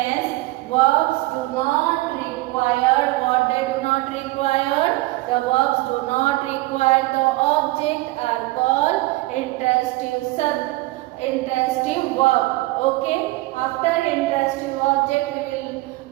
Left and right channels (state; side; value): quieter; left; 20.6 dB